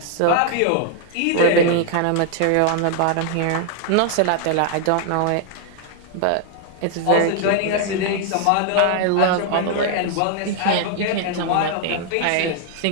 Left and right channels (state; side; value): different; both; correlation 0.00